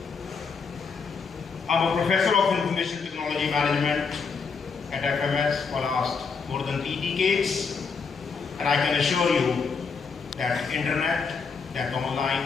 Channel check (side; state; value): right; quieter; 5.3 dB